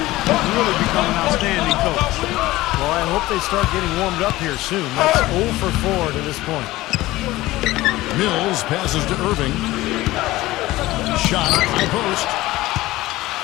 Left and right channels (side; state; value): right; quieter; 17.8 dB